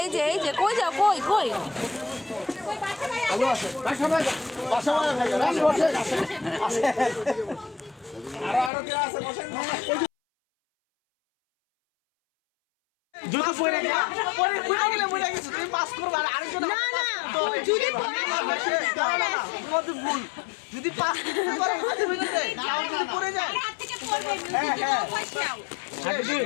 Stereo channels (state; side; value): drops out; right; at 8.7 s